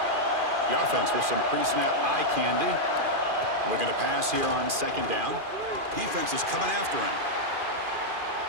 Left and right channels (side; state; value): left; late; 2.4 ms